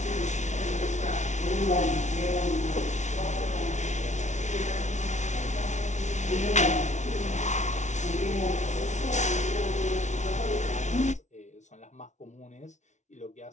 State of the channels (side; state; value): right; late; 0.34 ms